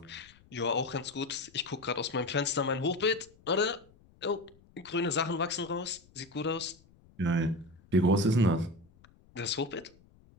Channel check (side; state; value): left; noise; rumble, 28 dB below the sound